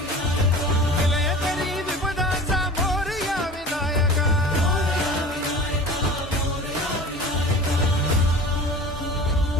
विलयकरी विपदांचा मोरया विनायक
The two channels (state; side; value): normal; both; correlation 0.38